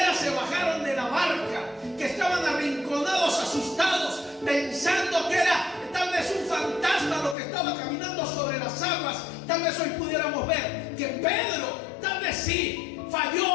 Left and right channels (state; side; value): drops out; right; at 7.4 s